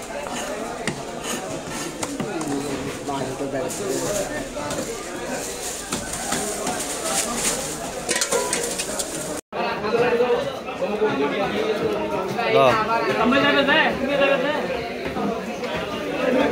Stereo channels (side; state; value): both; identical; correlation 1.00